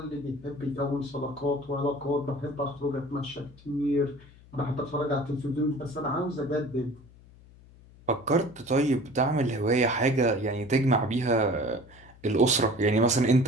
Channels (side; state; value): left; noise; hum, 23 dB below the sound